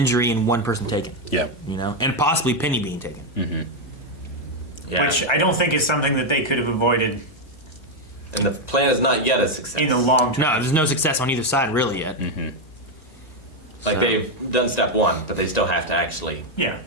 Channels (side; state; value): right; late; 2.0 ms